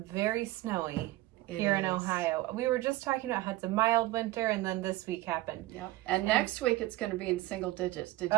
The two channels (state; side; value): quieter; left; 17.4 dB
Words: very snowy here in Ohio. We were just talking about how it's a mild winter, and then this week happened. Yep. And next week, it's going to be in single digits. Did